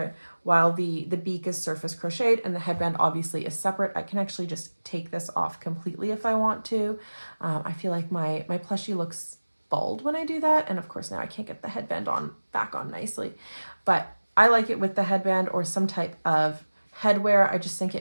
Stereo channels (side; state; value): both; inverted; correlation -1.00